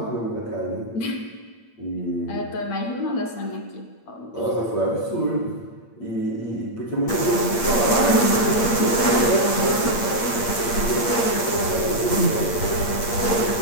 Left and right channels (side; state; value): right; late; 8.5 ms